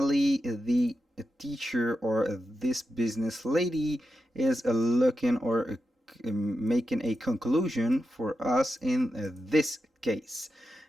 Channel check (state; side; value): normal; both; correlation 0.89